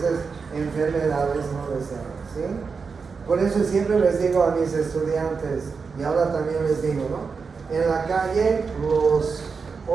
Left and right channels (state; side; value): quieter; left; 5.2 dB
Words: enfermedades no deseadas, ¿sí? Por eso siempre les digo a mis estudiantes, y ahora también les digo, ¿no? En la calle los